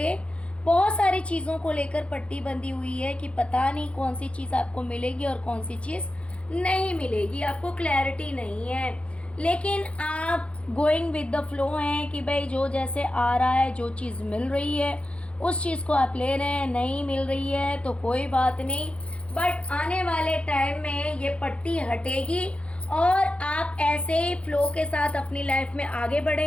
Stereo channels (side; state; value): right; late; 0.061 ms